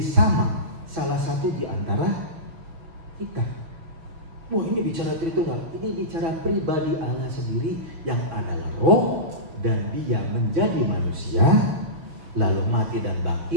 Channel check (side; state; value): left; late; 6.2 ms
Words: sama salah satu di antara kita. Wah, ini bicara Tritunggal, ini bicara pribadi Allah sendiri yang adalah roh, dan dia menjadi manusia, lalu mati dan